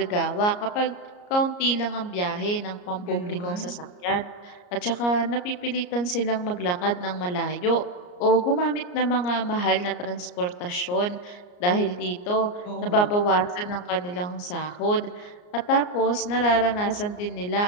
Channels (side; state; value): right; late; 34 ms